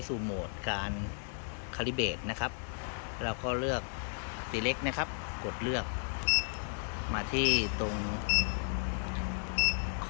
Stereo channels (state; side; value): silent; right; 55 dB below the other